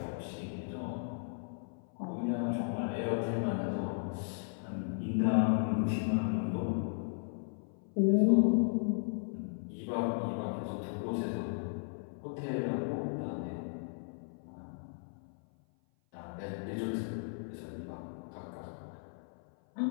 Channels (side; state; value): right; silent; 54 dB below the other